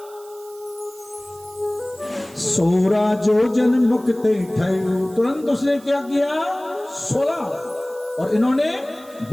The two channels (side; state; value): right; noise; hiss, 23 dB below the sound